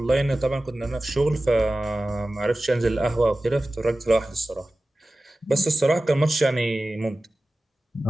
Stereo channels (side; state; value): both; normal; correlation 0.96